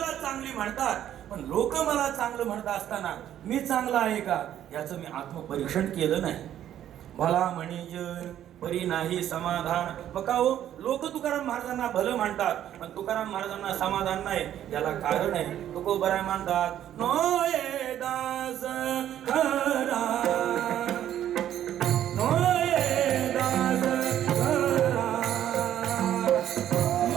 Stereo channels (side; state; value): left; quieter; 11.2 dB